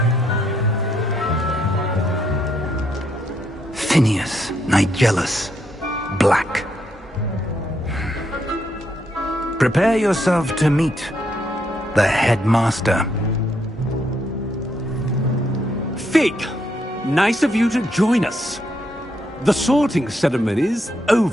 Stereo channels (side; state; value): both; normal; correlation 0.76